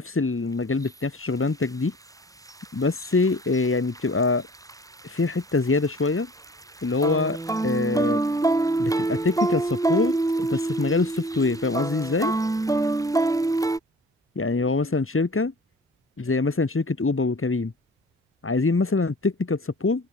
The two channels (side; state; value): both; normal; correlation 0.46